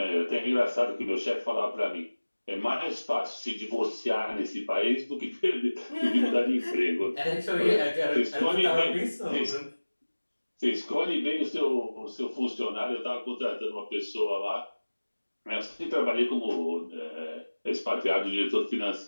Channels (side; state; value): both; inverted; correlation -1.00